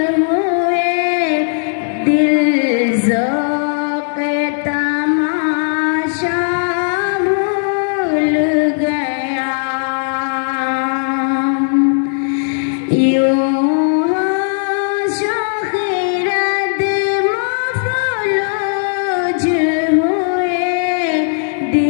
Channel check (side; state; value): right; silent; digital silence